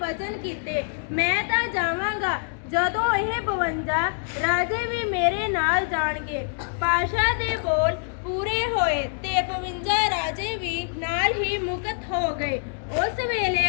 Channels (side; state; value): right; silent; digital silence